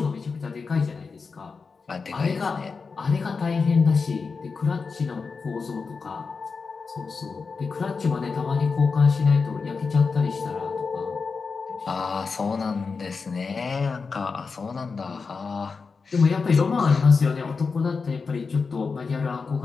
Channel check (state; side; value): quieter; right; 4.8 dB